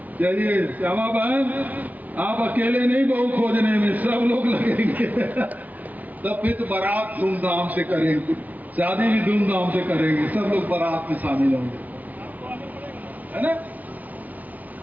चलिए श्यामा बहन, आप अकेले नहीं बहू खोजने में, सब लोग लगेंगे। तब फिर तो बारात धूमधाम से करेंगे, शादी भी धूमधाम से करेंगे, सब लोग बारात में शामिल होंगे, है ना?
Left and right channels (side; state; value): left; late; 0.075 ms